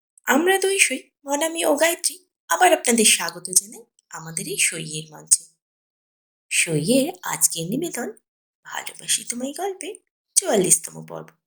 আমরা দুই সই মনামি ও গায়ত্রী আবার আপনাদের স্বাগত জানাই আমাদের এই সইয়ের মঞ্চে। সইয়ের আজকের নিবেদন ভালোবাসি তোমায় গল্পের ৪৪তম পর্ব।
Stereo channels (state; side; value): identical; both; correlation 1.00